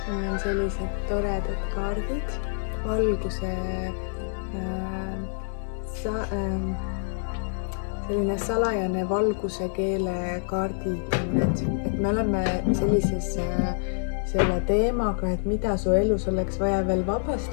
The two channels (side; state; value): right; silent; digital silence